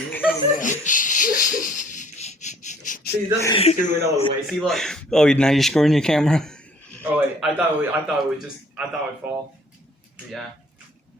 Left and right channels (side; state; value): both; normal; correlation 0.58